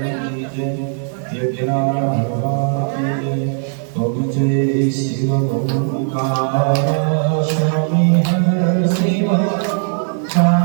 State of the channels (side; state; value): left; silent; 60 dB below the other